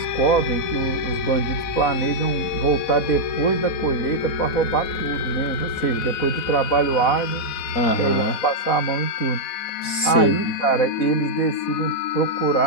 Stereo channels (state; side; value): late; right; 4.1 ms